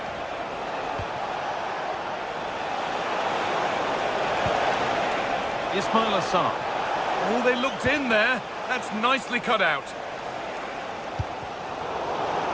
Ismail Assar. Oh, they looked in there. That's nicely cut out.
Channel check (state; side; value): identical; both; correlation 1.00